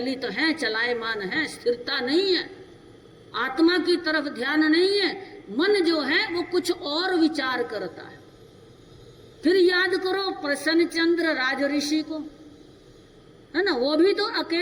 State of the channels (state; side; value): identical; both; correlation 1.00